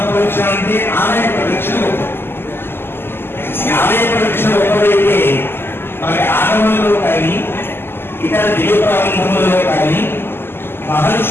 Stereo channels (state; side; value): late; right; 0.11 ms